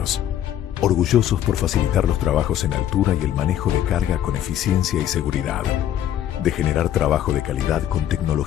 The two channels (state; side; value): quieter; right; 11.1 dB